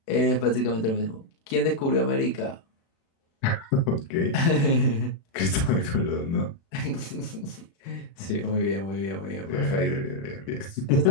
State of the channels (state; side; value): late; right; 36 ms